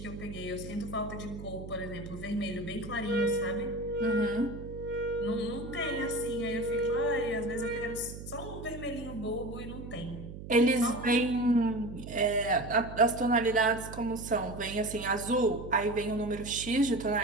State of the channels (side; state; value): right; noise; hum, 11 dB below the sound